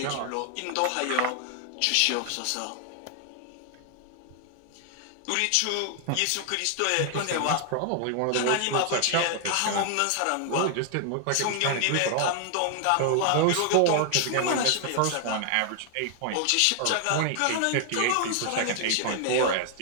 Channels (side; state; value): both; different; correlation 0.00